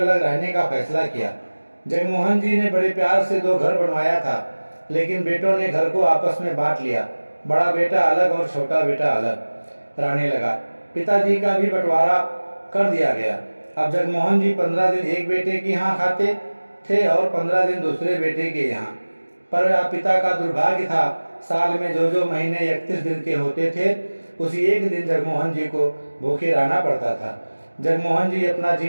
रहने का फैसला किया। जगमोहन जी ने बड़े प्यार से 2 घर बनवाया था, लेकिन बेटों ने घर को आपस में बांट लिया। बड़ा बेटा अलग और छोटा बेटा अलग रहने लगा। पिताजी का भी बंटवारा कर दिया गया। अब जगमोहन जी 15 दिन एक बेटे के यहाँ खाते थे और 15 दिन दूसरे बेटे के यहाँ। पर पिता का दुर्भाग्य था, साल में जो महीने 31 दिन के होते थे, उसी एक दिन जगमोहन जी को भूखे रहना पड़ता था। जगमोहन जी अपना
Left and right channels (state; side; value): inverted; both; correlation -1.00